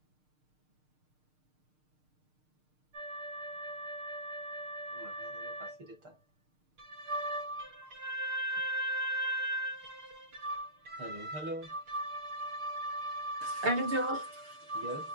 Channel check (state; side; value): late; left; 6.6 ms